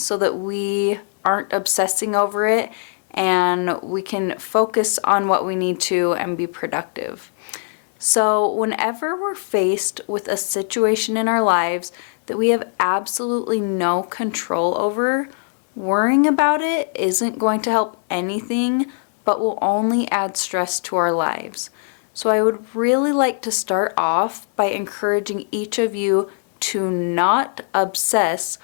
that we aren't obsessing over it and we can focus on what we need to and be productive. So whenever we're faced with a situation in our lives that we have absolutely no control over, worrying about it isn't going to help anything, but will only add stress to our lives. So I would really like to start off by encouraging each of you to not obsess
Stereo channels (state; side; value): silent; right; digital silence